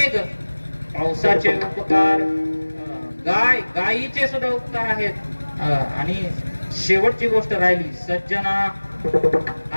पावसाचे उपकार, गायीचे सुद्धा उपकार आहेत. आणि शेवटची गोष्ट राहिली सज्जना.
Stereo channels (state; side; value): inverted; both; correlation -1.00